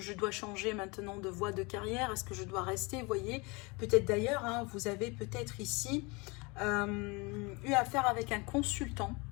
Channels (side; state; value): right; quieter; 27.5 dB